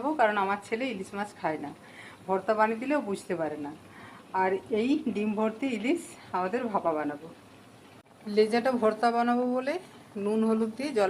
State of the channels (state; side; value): identical; both; correlation 1.00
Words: কারণ আমার ছেলে ইলিশ মাছ খায় না। ভর্তা বানিয়ে দিলেও বুঝতে পারে না। আর এই ডিম ভর্তি ইলিশ আমাদের ভাপা বানাবো। লেজাটা ভর্তা বানাবো বলে নুন হলুদ দিয়ে